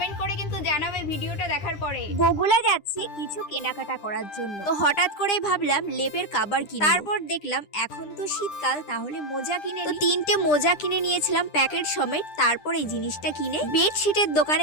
করে কিন্তু জানাবে ভিডিওটা দেখার পরে। বগুলা যাচ্ছি কিছু কেনাকাটা করার জন্য, তো হঠাৎ করেই ভাবলাম লেপের কাবার কিনবো। তারপর দেখলাম এখন তো শীতকাল, তাহলে মোজা কিনে তো 3টে মোজা কিনে নিয়েছিলাম প্যাকেট সমেত। তারপর এই জিনিসটা কিনে বেডশিটের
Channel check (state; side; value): late; right; 9.9 ms